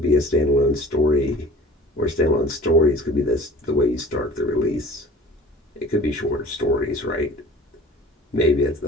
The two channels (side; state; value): both; normal; correlation 0.45